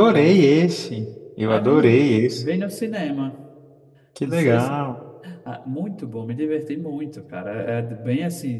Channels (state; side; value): identical; both; correlation 1.00